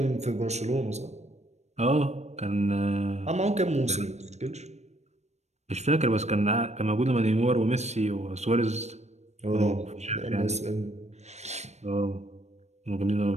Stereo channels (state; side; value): late; left; 0.32 ms